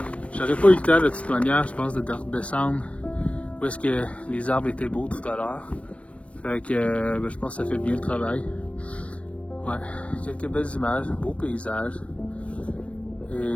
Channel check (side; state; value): right; late; 0.063 ms